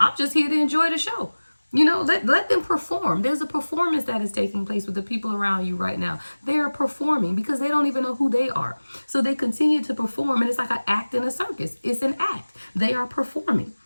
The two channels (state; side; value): inverted; both; correlation -1.00